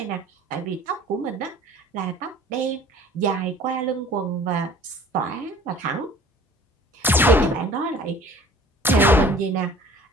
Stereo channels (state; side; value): normal; both; correlation 0.49